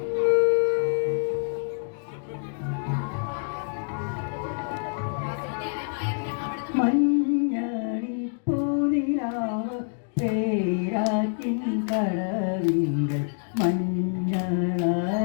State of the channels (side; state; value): right; silent; digital silence